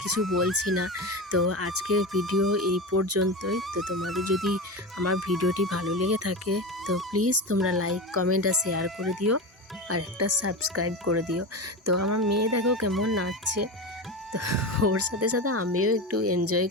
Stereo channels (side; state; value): both; normal; correlation 0.22